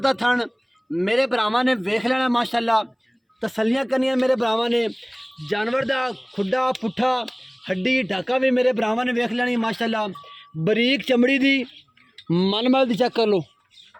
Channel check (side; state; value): both; identical; correlation 1.00